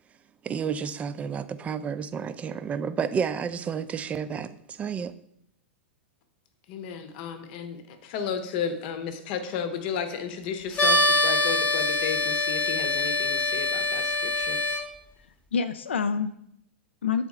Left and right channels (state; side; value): normal; both; correlation 0.00